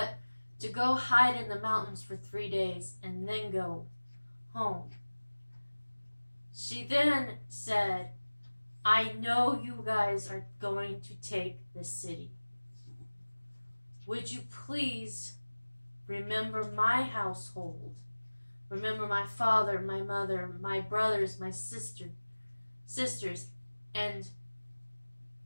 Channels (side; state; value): both; inverted; correlation -1.00